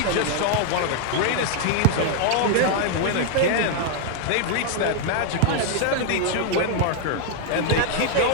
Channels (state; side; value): different; both; correlation 0.00